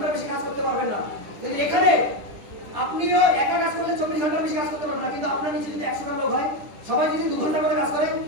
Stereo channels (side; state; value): left; late; 10 ms